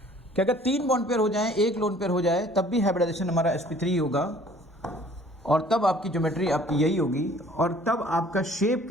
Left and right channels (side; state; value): both; normal; correlation 0.54